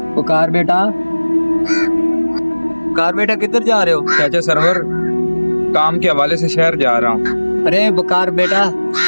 पुकार बेटा, पुकार बेटा, किधर जा रहे हो? चाचा सरवर, काम के हवाले से शहर जा रहा हूँ। अरे बुकार बेटा,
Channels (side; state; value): both; inverted; correlation -1.00